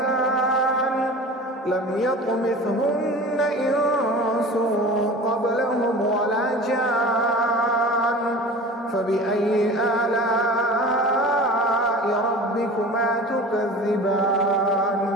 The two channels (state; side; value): normal; both; correlation 0.38